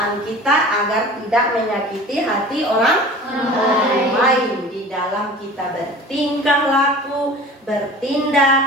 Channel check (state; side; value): normal; both; correlation 0.41